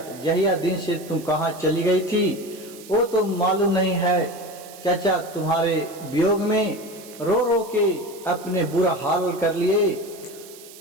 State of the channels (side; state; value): right; noise; hiss, 19 dB below the sound